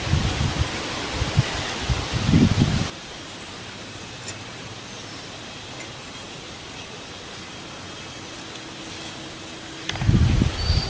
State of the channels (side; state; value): both; identical; correlation 1.00